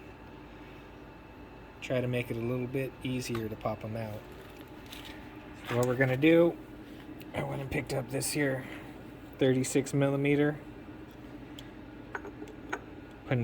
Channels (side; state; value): both; identical; correlation 1.00